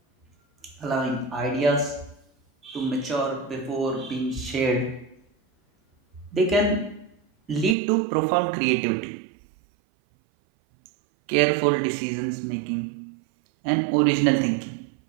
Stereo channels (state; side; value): drops out; left; at 7.8 s